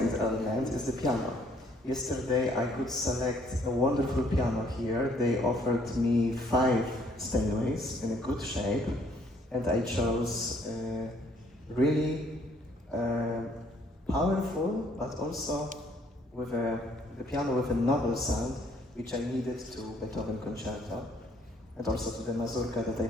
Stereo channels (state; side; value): normal; both; correlation 0.64